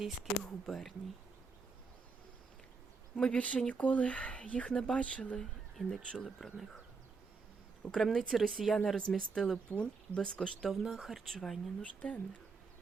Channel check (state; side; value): quieter; left; 4.5 dB